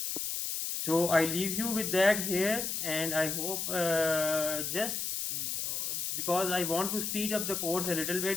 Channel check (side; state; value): left; noise; hiss, 2 dB below the sound